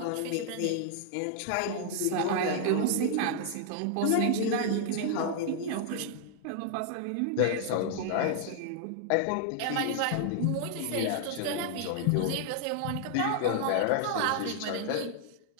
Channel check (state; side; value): different; both; correlation 0.00